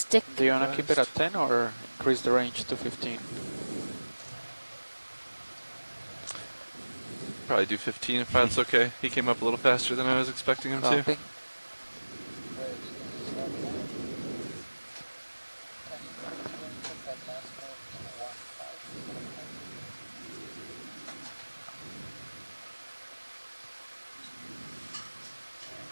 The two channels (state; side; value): inverted; both; correlation -1.00